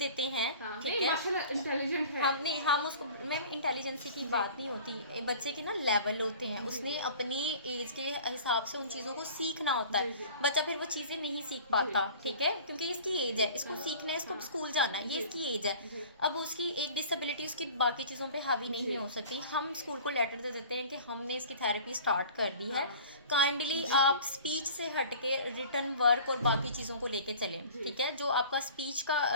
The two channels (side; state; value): both; inverted; correlation -0.43